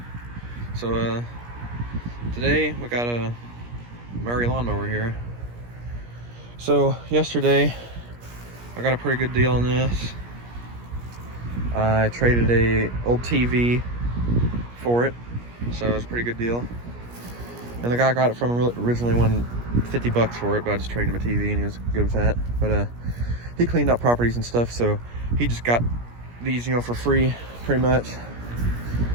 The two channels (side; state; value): left; late; 17 ms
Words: So today we got a Murray lawnmower here. So yesterday I got a pretty good deal on this. I traded a old TV for it, so it was a pretty good deal. And the guy I got it from originally won $50 for it, but I just traded him a TV and he was good with that. But he cleaned up properties and stuff, so he just got these, for free, pretty much.